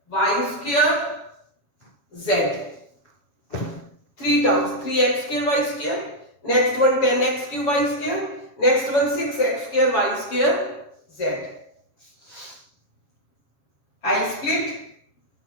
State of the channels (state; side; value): late; right; 7.3 ms